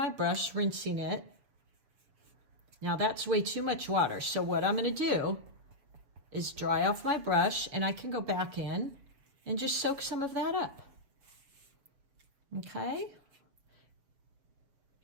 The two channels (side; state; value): left; late; 7.0 ms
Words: brush, rinsing it. Now that's way too much water. So what I'm going to do is dry off my brush, and I can go back in and just soak some of that up. Okay.